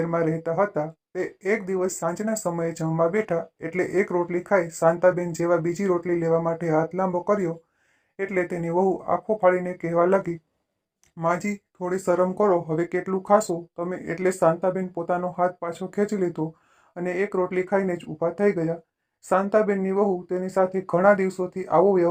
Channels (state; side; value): identical; both; correlation 1.00